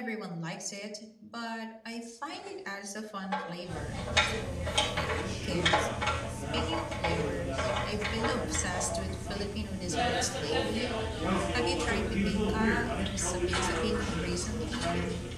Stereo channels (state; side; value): identical; both; correlation 1.00